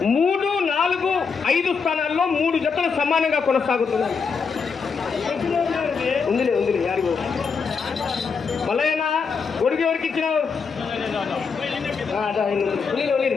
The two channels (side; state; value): right; quieter; 5.5 dB